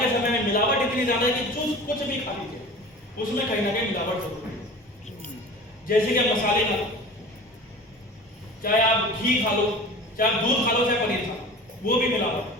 के समय में मिलावट इतनी ज्यादा है कि जो कुछ भी खा लीजिए उसमें कहीं ना कहीं मिलावट जरूर है। जैसे कि मसाले खा लो, चाहे आप घी खा लो, चाहे आप दूध खा लो, चाहे पनीर खा लो, वो भी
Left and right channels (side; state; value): both; normal; correlation 0.39